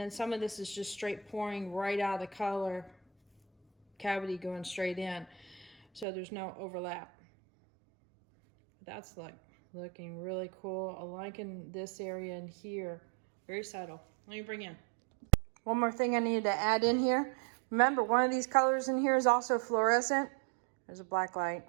some of this is just straight pouring right out of the color cavity going straight in. So there's no overlap. That's like looking really cool. I'm liking this area in here. Very subtle. Let me bring in. One more thing I need to add in here. Remember, one of these colors in here is also fluorescent. There's a black light.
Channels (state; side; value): drops out; left; at 6.1 s